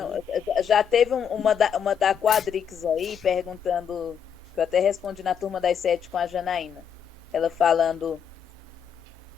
Não, já teve uma da Quadrix aí, perguntando, que eu até respondi na turma das 7 com a Janaína. Ela falando,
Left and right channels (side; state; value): right; quieter; 7.7 dB